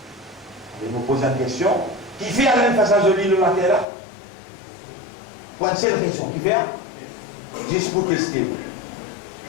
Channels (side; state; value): right; drops out; at 3.9 s